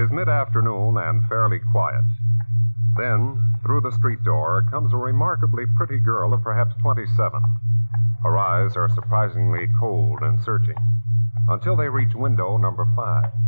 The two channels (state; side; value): inverted; both; correlation -1.00